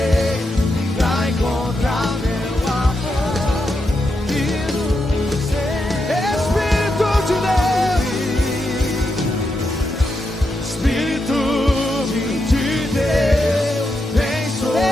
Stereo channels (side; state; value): both; normal; correlation 0.84